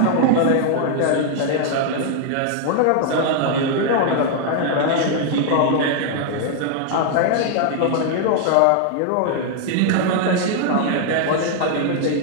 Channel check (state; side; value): different; both; correlation 0.00